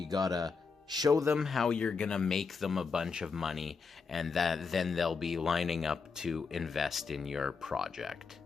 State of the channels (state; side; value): quieter; right; 5.1 dB